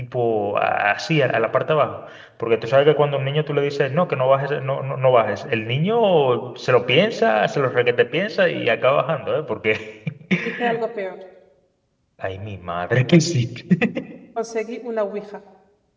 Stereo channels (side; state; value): both; identical; correlation 1.00